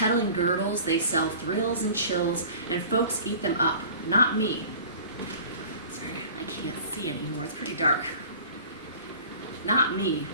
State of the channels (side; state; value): both; inverted; correlation -0.43